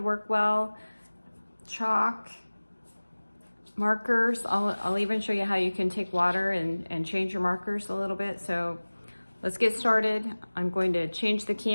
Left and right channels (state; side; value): inverted; both; correlation -1.00